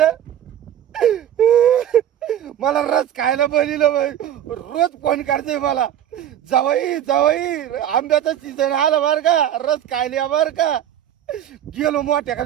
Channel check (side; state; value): left; quieter; 10.6 dB